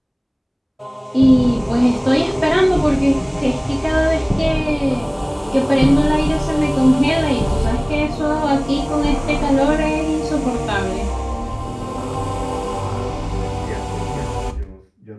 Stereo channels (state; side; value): identical; both; correlation 1.00